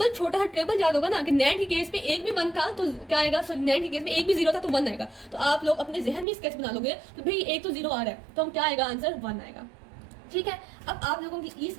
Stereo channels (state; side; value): drops out; left; at 6.2 s